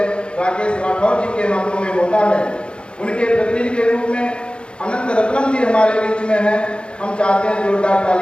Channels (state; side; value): late; right; 0.055 ms